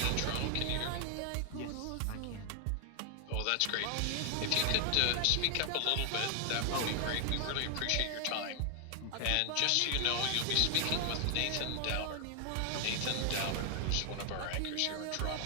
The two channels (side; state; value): both; different; correlation 0.00